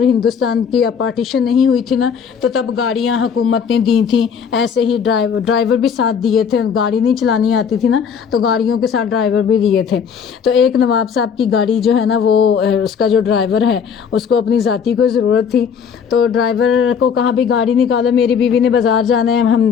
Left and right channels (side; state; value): right; quieter; 6.9 dB